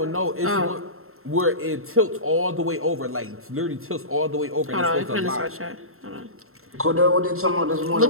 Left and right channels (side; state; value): left; late; 0.62 ms